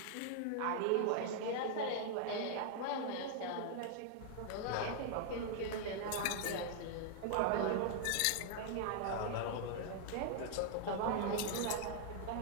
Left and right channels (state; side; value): different; both; correlation 0.00